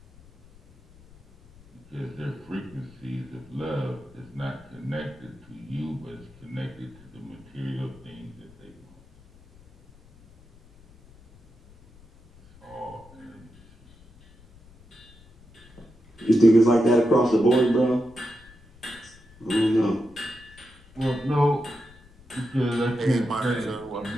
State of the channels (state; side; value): noise; left; rumble, 25 dB below the sound